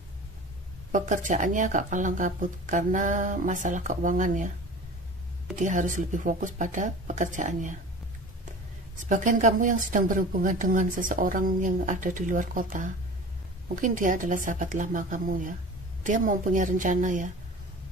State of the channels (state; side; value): normal; both; correlation 0.38